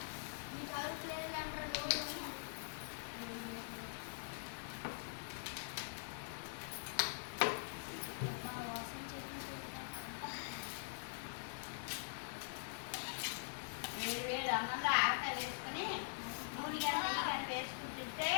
వేడి అన్నంలో ఆవకాయ వేసుకొని నూనె కానీ వేసుకుని తింటే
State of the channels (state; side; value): silent; right; digital silence